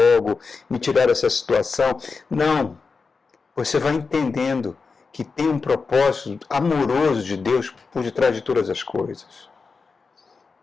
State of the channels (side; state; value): right; quieter; 4.7 dB